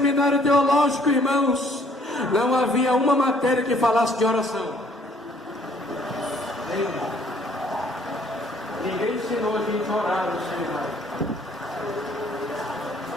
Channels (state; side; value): normal; both; correlation 0.62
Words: teológico, irmãos, não havia uma matéria que falasse de oração. Ninguém ensinou a gente a orar no seminário,